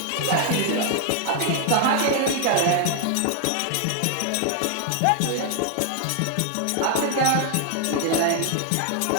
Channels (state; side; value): different; both; correlation 0.00